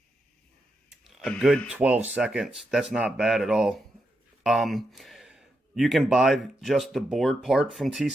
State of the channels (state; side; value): normal; both; correlation 0.84